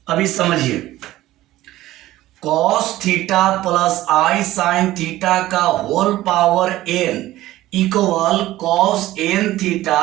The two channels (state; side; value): quieter; left; 15.8 dB